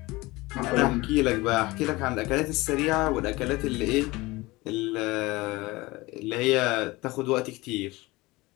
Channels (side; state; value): right; quieter; 21.4 dB